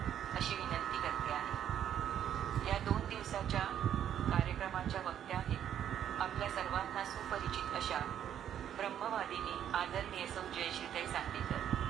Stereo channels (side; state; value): left; quieter; 9.9 dB